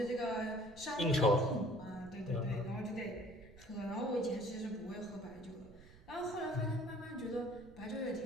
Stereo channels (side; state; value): right; noise; rumble, 21 dB below the sound